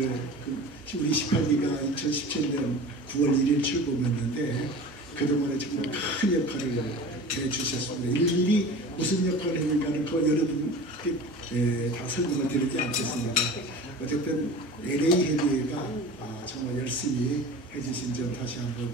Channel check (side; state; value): both; normal; correlation 0.37